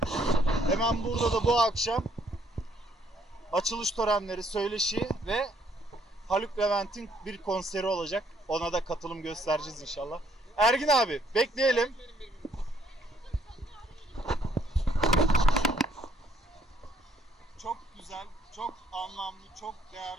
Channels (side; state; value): both; normal; correlation 0.66